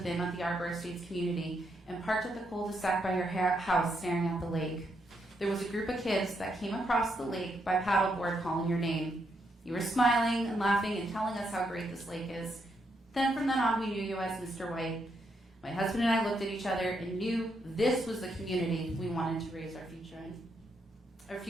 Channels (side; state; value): both; normal; correlation 0.78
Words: them at the Arbor Estates community and parked at the cul-de-sac by your house staring at the lake. There was a group of kids that came across the lake by paddleboard calling your name. You were smiling and laughing and telling us how great this lake is. Then from then on, we knew you as Mr. White. My husband and I looked at each other and knew this was the community we wanted to raise our